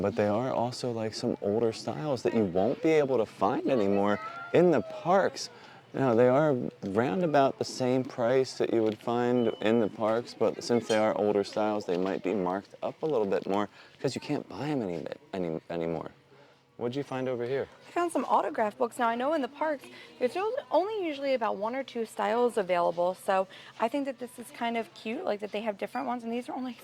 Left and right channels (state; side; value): identical; both; correlation 1.00